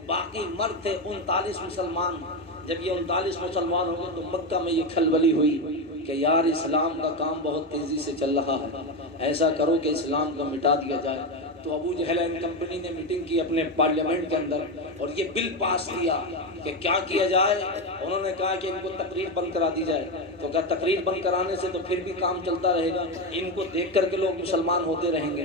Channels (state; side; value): normal; both; correlation 0.13